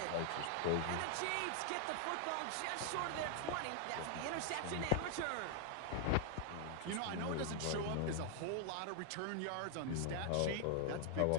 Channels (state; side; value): different; both; correlation 0.00